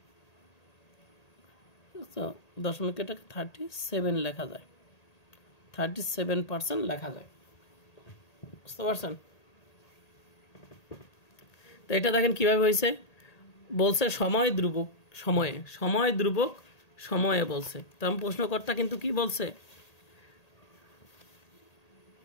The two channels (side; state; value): right; late; 1.8 ms